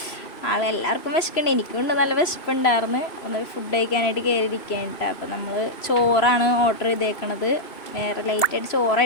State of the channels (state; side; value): late; right; 3.0 ms